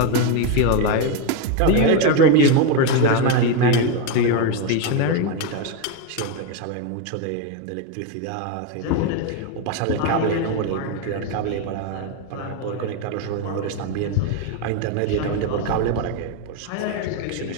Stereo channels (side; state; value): both; different; correlation 0.03